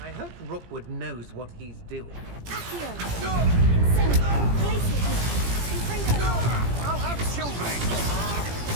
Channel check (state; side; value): late; left; 17 ms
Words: I hope Rookwood knows what he's doing. Accio. Incendio. Glacier. Confringo. I'll have children!